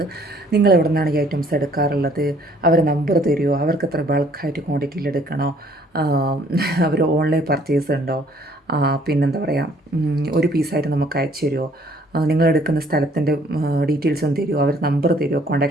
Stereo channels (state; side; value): normal; both; correlation 0.61